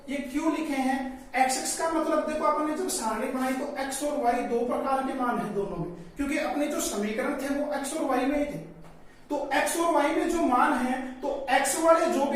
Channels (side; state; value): both; identical; correlation 1.00